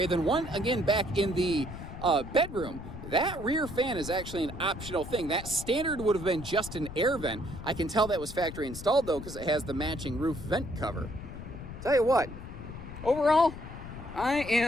then one again back in the bedroom. That rear fan is actually an optional thing. That standard would have been just an air vent. I can tell that was factory installed though, because it has the matching roof vent cover. Tell you what, overall, I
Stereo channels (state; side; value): noise; left; rumble, 11 dB below the sound